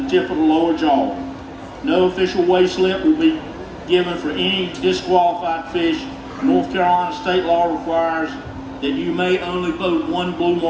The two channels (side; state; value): both; identical; correlation 1.00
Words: the tip of the lower jaw. No official weigh slip will be given for any disqualified fish. North Carolina state law requires that you may only boat one blue